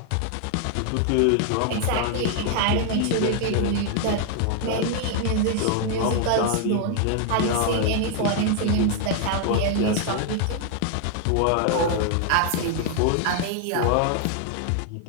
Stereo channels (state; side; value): different; both; correlation 0.00